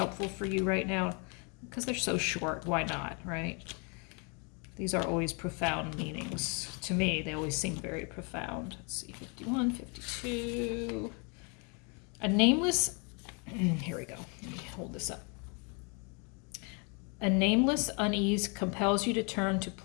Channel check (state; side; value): quieter; right; 34.5 dB